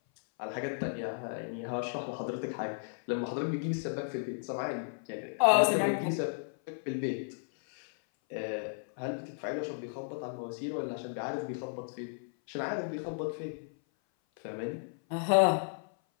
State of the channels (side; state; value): right; silent; 55 dB below the other